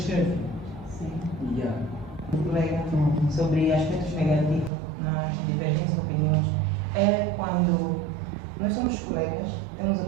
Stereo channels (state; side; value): drops out; left; at 4.7 s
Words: Sim. Yeah. Colega, sobre aspectos negativos nas divergentes opiniões, é quando nós somos colegas, temos